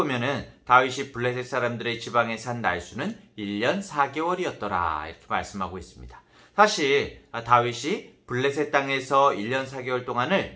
다윗이 블레셋 사람들의 지방에 산 날수는 1년 4개월이었더라 이렇게 말씀하고 있습니다. 사실 다윗이 블레셋 땅에서 1년 4개월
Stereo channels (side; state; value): both; identical; correlation 1.00